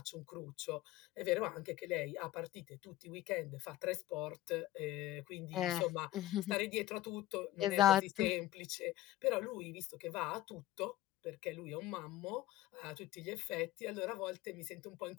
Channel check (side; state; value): right; quieter; 15.2 dB